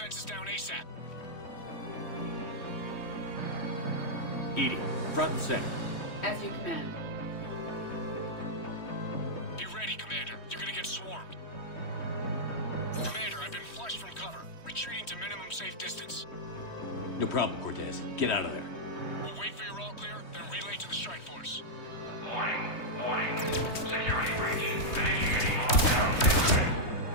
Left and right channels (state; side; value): late; right; 3.1 ms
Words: down ASAP. EDI, front and center. As you command. Be ready, Commander. You're gonna get swarmed. Commander, I've been flushed from cover. Retreating to minimum safe distance. No problem, Cortez. Get out of there. We'll wait for your all clear, then relay to the strike force. Warning. Security breach.